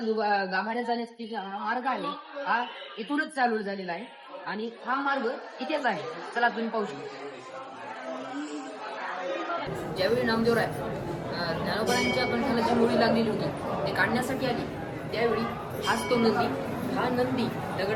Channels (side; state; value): both; identical; correlation 1.00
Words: गाभाऱ्यात जाण्याचा मार्ग आहे हा इथूनच चालू झालेला आहे. आणि हा मार्ग इथेच आहे. चला तुम्ही पाहू शकता. ज्यावेळी नामदेवराय ज्ञानोबारायांच्या कंठाला जी मुळी लागलेली होती ते काढण्यासाठी आली त्यावेळी हाच तो नंदी. हा नंदी